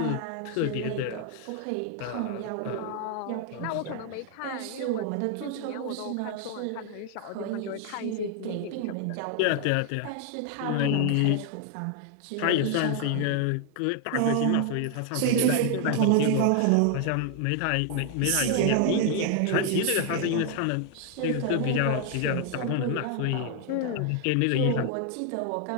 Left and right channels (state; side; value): different; both; correlation 0.00